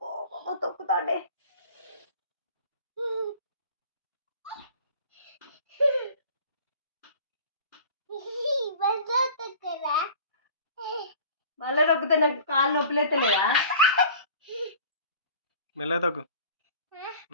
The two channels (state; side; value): inverted; both; correlation -0.44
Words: తొక్కుతాడే. మళ్ళీ నొక్కితే నాకు కాళ్ళు నొప్పులు ఎత్తలేదా? మెల్లగా తగ్గు,